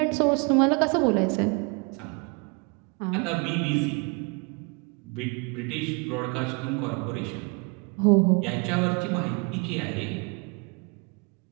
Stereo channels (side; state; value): left; quieter; 31.9 dB